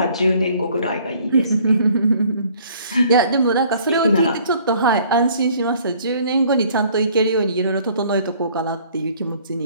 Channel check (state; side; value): inverted; both; correlation -0.57